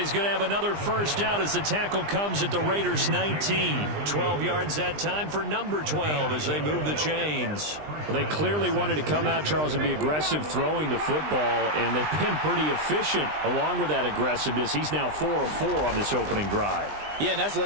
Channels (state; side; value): late; left; 20 ms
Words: going to have another first down as the tackle comes at the Raiders' 19. 12 yards that time for number 12 as they move the chains. Well, they clearly wanted to come out, Charles, and be aggressive throwing the football, and they've been pretty efficient along with that aggressiveness. He's now 4 of 4 on this opening drive. Yeah, and that's